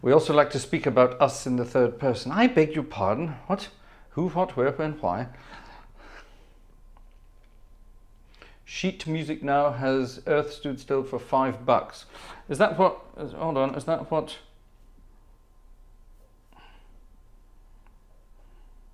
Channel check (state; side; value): identical; both; correlation 1.00